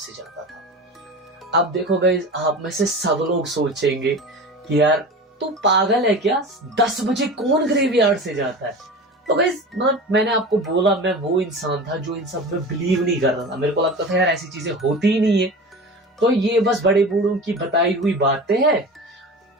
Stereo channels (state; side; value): normal; both; correlation 0.33